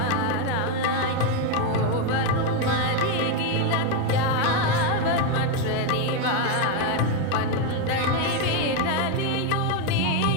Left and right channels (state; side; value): different; both; correlation 0.02